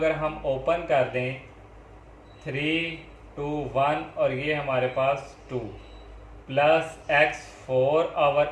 हम ओपन कर दें 3 2 1 और ये हमारे पास 2 प्लस x4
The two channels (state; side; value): identical; both; correlation 1.00